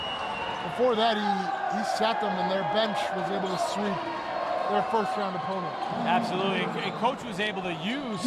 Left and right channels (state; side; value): identical; both; correlation 1.00